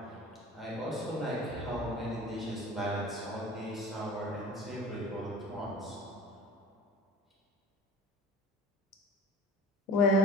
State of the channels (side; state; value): both; normal; correlation 0.40